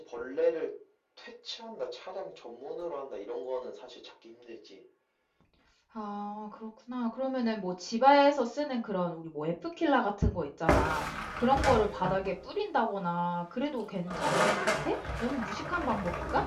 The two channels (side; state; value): both; identical; correlation 1.00